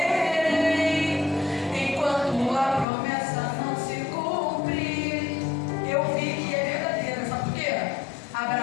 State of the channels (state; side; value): drops out; right; at 2.9 s